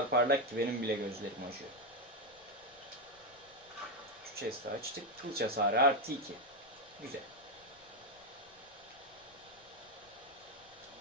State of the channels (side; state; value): left; noise; rumble, 28 dB below the sound